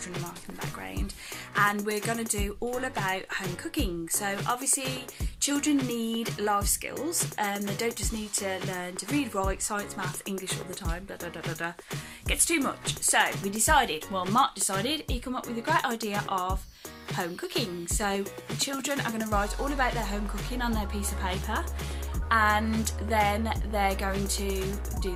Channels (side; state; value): both; identical; correlation 1.00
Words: marking in the background, and we're going to do all about home cooking. So obviously children need life skills, they don't just need to learn to read, write, science, maths, English all the time, Gets too much. So Mark decided he'd come up with a great idea of home cooking. So the children are going to write all about their home cooking on their piece of paper, and then they're going to do